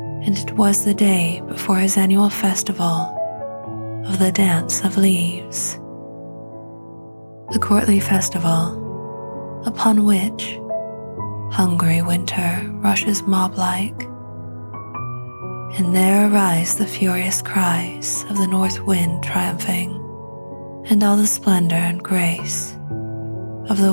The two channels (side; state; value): both; inverted; correlation -1.00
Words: and it was the day before his annual festival of the Dance of Leaves, the courtly festival upon which hungry winter rushes mob-like, and there arise the furious cries of the north wind triumphing, and all the splendor and grace of